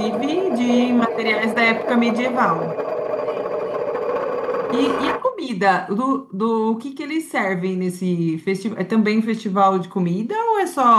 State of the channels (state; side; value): identical; both; correlation 1.00